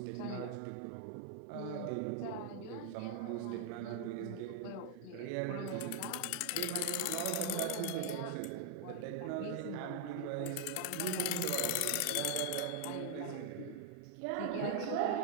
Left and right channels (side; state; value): both; different; correlation 0.00